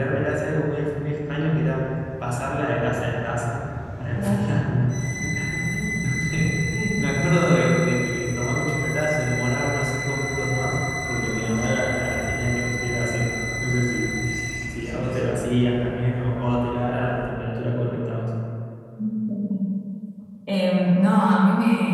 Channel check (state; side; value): identical; both; correlation 1.00